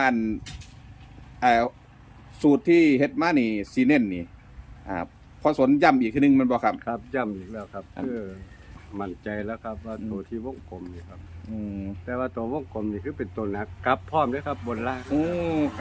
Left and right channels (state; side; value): identical; both; correlation 1.00